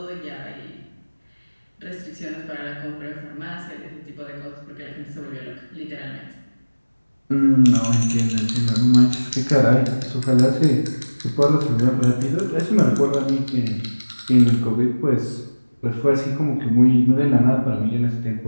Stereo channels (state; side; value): inverted; both; correlation -1.00